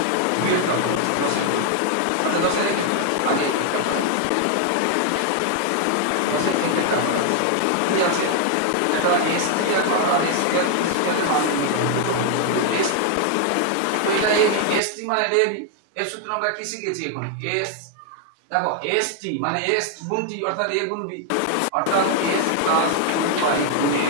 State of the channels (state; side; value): different; both; correlation 0.00